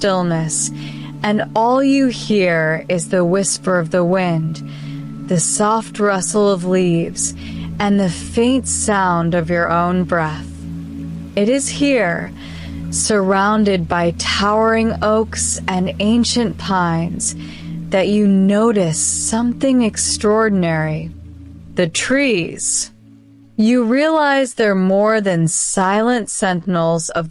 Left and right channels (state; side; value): identical; both; correlation 1.00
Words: and all you hear is the whisper of the wind, the soft rustle of leaves, and the faint sound of your own breath. It is here, surrounded by towering oaks and ancient pines, that you notice something extraordinary. The trees. You realize they're more than silent sentinels